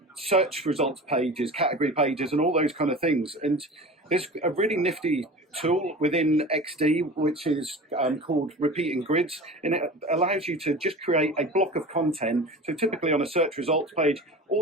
search results pages, category pages, and all those kind of things. And there's a really nifty tool within XD which is called repeating grids, and it allows you to just create a block of content. So typically on a search results page,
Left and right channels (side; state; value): both; normal; correlation 0.35